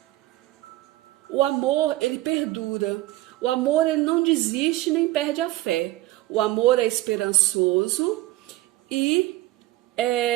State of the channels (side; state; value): left; quieter; 17.0 dB